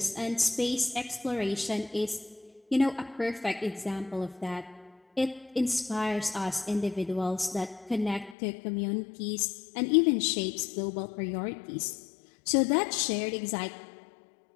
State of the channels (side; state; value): right; drops out; at 8.3 s